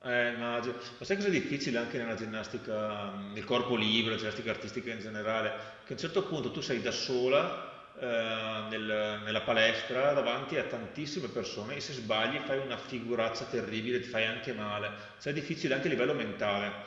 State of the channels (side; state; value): both; identical; correlation 1.00